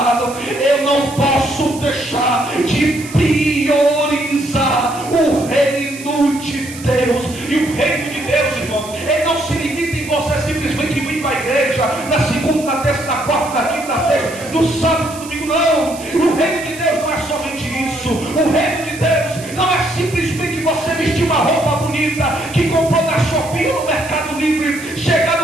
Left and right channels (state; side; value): noise; right; hiss, 15 dB below the sound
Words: Eu não posso deixar de priorizar o reino de Deus. E o reino de Deus, irmão, ele não se limita em você simplesmente vir para a igreja na segunda, na terça, na quarta, na quinta, na sexta, no sábado, no domingo. Não, o reino de Deus não é somente isso. O reino de Deus não é simplesmente você vestir uma roupa bonita que comprou na Shopee ou no Mercado Livre,